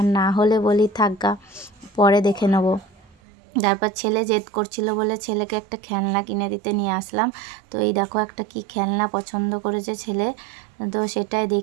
না হলে বলি থাকগা, পরে দেখে নেবো। তারপর ছেলে জেদ করছিল বলে ছেলেকে একটা খেলনা কিনে দিতে নিয়ে আসলাম। তো এই দেখো একটা কি খেলনা পছন্দ করেছে ছেলে, তো সেটাই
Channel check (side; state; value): left; drops out; at 3.2 s